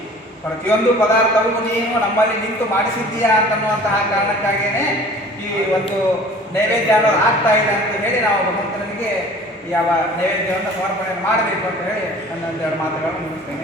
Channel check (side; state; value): both; normal; correlation 0.47